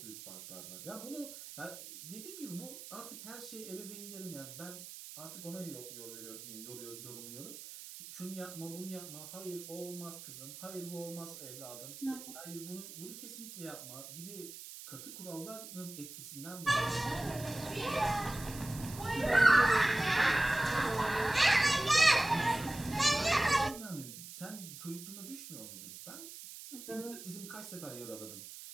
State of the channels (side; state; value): right; noise; hiss, 12 dB below the sound